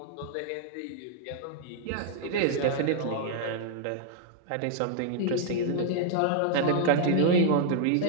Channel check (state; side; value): different; both; correlation -0.01